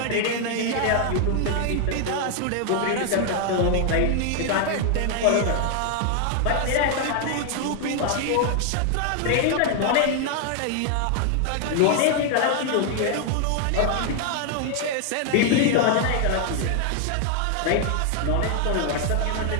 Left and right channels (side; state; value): both; different; correlation 0.00